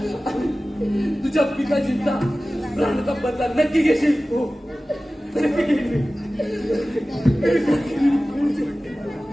तुझ्या पिताजींचा प्राणाचा बदला नक्की घेशील. हो नक्की घेईल.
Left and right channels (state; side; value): normal; both; correlation 0.96